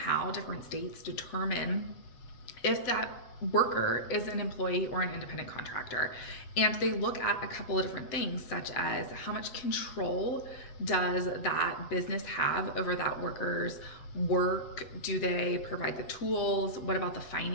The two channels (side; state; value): right; late; 8.0 ms